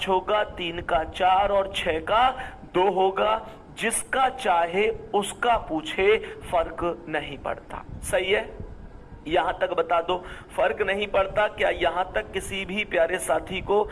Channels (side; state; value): both; identical; correlation 1.00